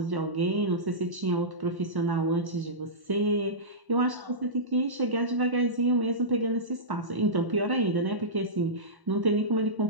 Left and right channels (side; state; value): left; late; 1.1 ms